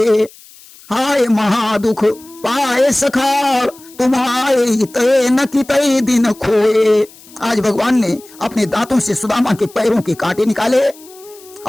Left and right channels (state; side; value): noise; left; hiss, 23 dB below the sound